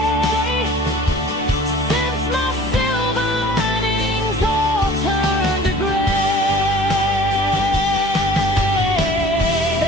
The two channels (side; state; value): both; normal; correlation 0.47